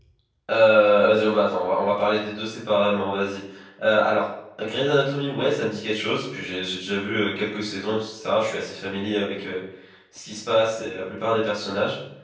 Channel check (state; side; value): identical; both; correlation 1.00